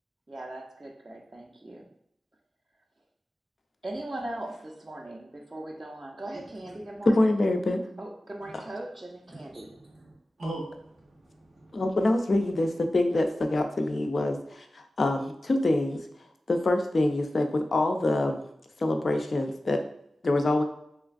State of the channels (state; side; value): normal; both; correlation 0.95